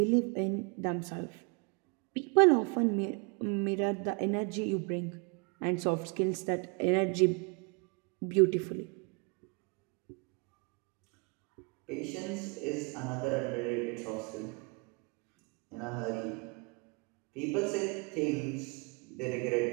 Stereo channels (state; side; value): quieter; left; 33.7 dB